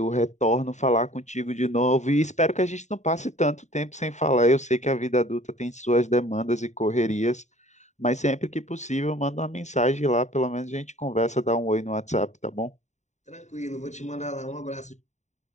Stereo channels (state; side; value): late; right; 0.34 ms